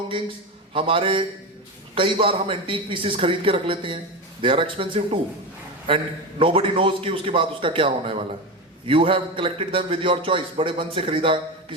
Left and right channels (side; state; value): both; normal; correlation 0.19